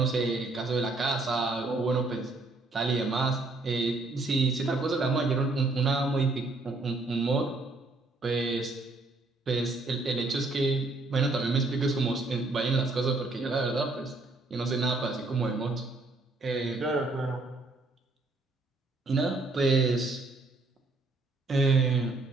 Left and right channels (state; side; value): quieter; left; 3.2 dB